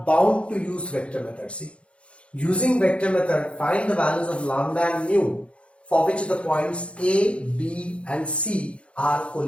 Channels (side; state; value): right; late; 0.060 ms